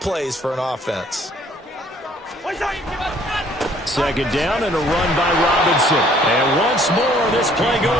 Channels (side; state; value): both; normal; correlation 0.60